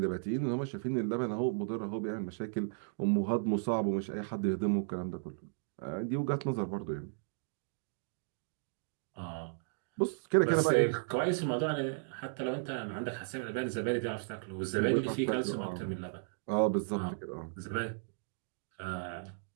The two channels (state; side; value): silent; left; digital silence